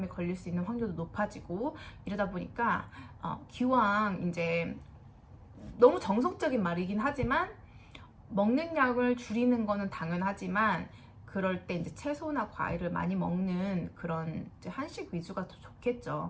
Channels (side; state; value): both; identical; correlation 1.00